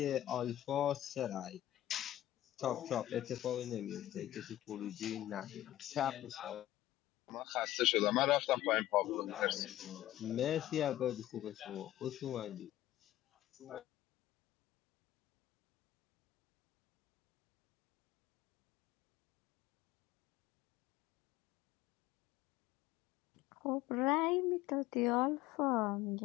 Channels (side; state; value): right; quieter; 14.3 dB